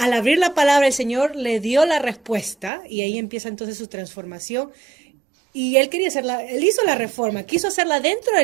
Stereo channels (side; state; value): left; drops out; at 2.7 s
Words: abrir la palabra el Señor le dio la respuesta y ahí empieza entonces su transformación. Y él quería hacerla, él hizo la reforma, quiso hacerla dentro de